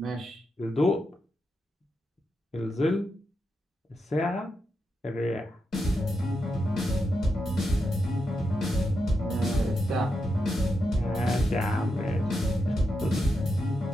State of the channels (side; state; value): both; normal; correlation 0.85